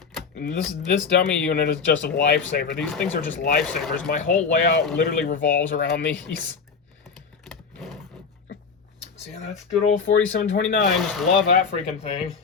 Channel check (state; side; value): quieter; right; 5.5 dB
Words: And this dummy unit is just a lifesaver. These things are just lifesavers. My whole layout literally revolves around these. So yeah, that's good old 4729. Just love that freaking thing.